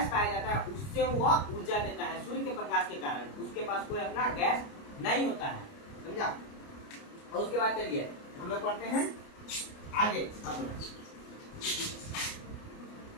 पाया जाता है उससे वो ऊर्जा देता है। सूर्य के प्रकाश के कारण उसके पास कोई अपना गैस नहीं होता है। समझा? और उसके बाद चलिए हम लोग पढ़ते हैं आगे। अपना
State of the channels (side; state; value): right; late; 29 ms